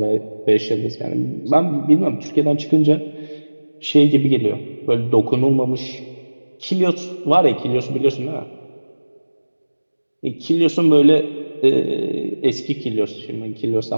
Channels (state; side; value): inverted; both; correlation -1.00